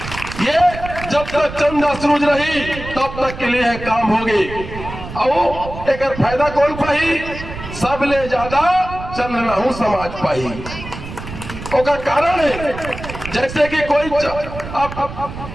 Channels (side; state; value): right; noise; rumble, 11 dB below the sound